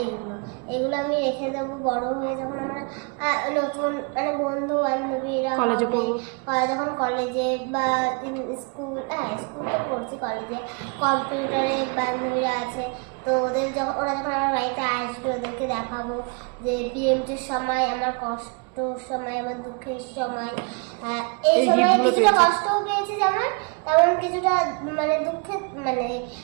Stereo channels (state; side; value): quieter; left; 34.5 dB